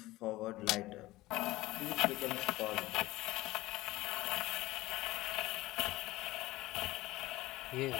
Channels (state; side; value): quieter; right; 18.2 dB